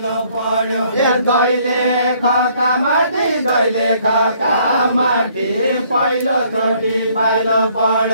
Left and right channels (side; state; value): both; inverted; correlation -0.64